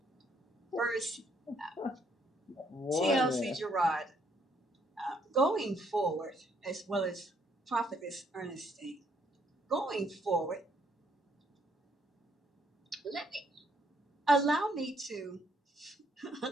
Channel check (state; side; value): normal; both; correlation 0.69